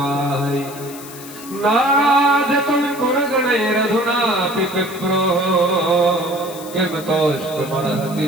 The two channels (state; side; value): noise; left; hiss, 15 dB below the sound